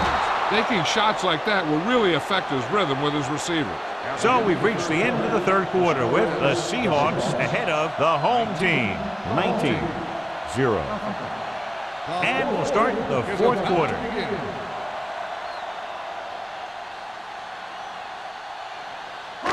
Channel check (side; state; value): both; identical; correlation 1.00